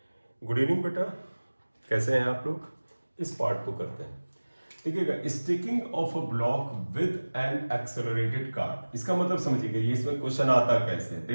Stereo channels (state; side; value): inverted; both; correlation -1.00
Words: Good evening बेटा, कैसे हैं आप लोग? इस पार्ट को करते हैं। देखिएगा, sticking of a block with N accelerated card, इसका मतलब समझिएगा, ये इसमें क्वेश्चन आता कैसे है।